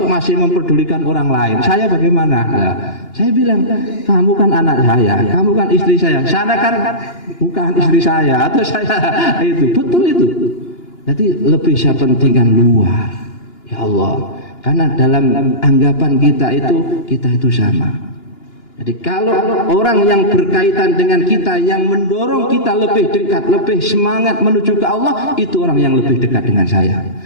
masih memperdulikan orang lain. Saya bagaimana? Nah, saya bilang, kamu kan anak saya, kamu kan istri saya. Sana kan bukan istri saya atau saya itu. Betul itu. Jadi lebih saya pentingkan luar. Ya Allah. Karena dalam anggapan kita itu sama. Jadi kalau orang yang berkaitan dengan kita, yang mendorong kita lebih dekat, lebih semangat menuju ke Allah, itu orang yang lebih dekat dengan saya.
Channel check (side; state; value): right; late; 2.9 ms